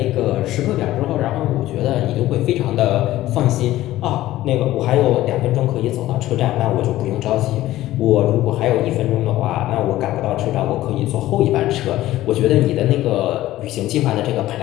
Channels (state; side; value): quieter; right; 15.3 dB